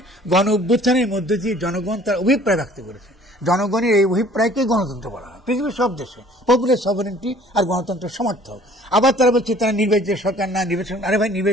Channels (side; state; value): both; normal; correlation 0.53